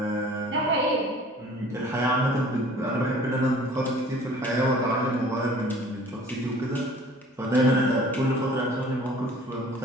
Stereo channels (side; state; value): both; normal; correlation 0.49